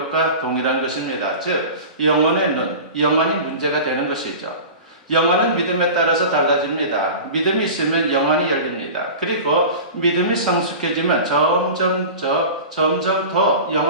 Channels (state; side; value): inverted; both; correlation -0.33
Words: 동일한 것입니다. 즉 영혼의 눈, 영혼이 문제가 되는 것이죠. 영혼은 믿음에 따라서 달라집니다. 믿음이 있으면 영혼이 열립니다. 그리고 믿음이 성숙해지면 점점 더